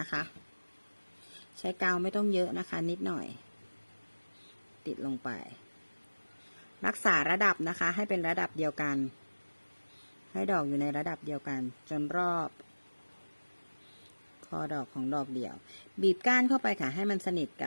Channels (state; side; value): inverted; both; correlation -1.00